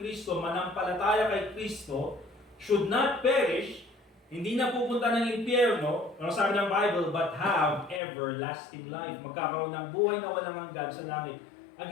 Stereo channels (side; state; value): right; drops out; at 8.0 s